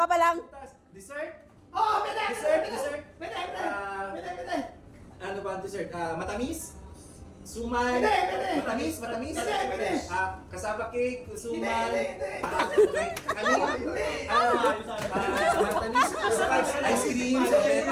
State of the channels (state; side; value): identical; both; correlation 1.00